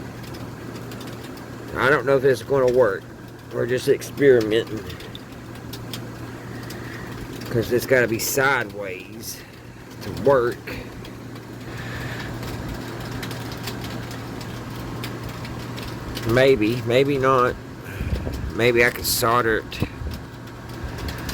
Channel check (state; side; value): identical; both; correlation 1.00